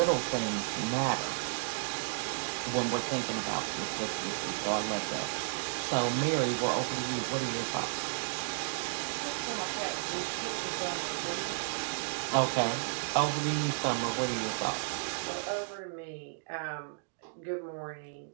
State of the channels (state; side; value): silent; left; digital silence